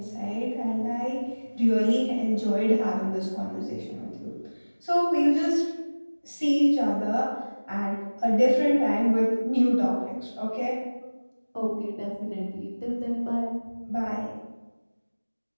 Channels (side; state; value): both; inverted; correlation -1.00